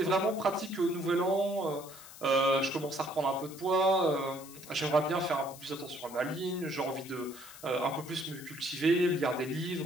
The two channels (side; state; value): left; noise; hiss, 17 dB below the sound